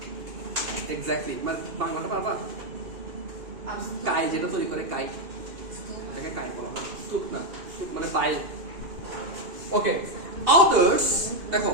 এক্স্যাক্টলি, মানে বাংলাটা পারবা? কাই, যেটা তৈরি করে কাই, এটাকে কাই বলা হয়, স্তূপ না, স্তূপ মানে বাইল। ওকে, others, দেখো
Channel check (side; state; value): left; late; 2.8 ms